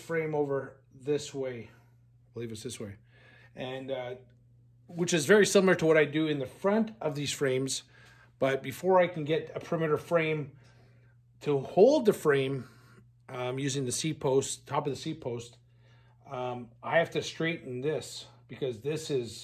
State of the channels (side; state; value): both; identical; correlation 1.00